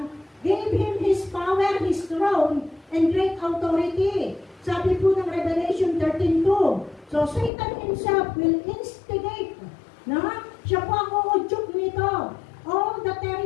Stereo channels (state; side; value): drops out; right; at 7.5 s